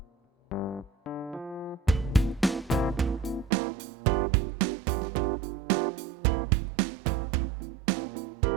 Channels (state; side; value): drops out; left; at 3.5 s